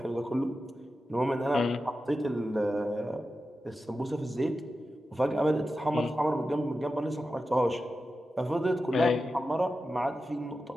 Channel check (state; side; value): normal; both; correlation 0.92